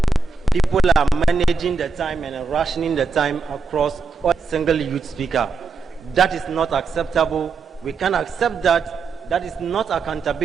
people are managing the time and rationing the time across every single youth speaker. That is not acceptable. We can't accept that. That is not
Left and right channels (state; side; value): quieter; left; 4.7 dB